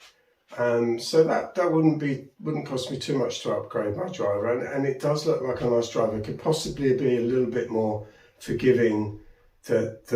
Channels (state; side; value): identical; both; correlation 1.00